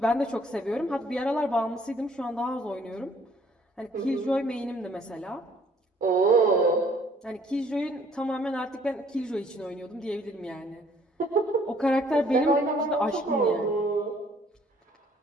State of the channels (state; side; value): normal; both; correlation 0.60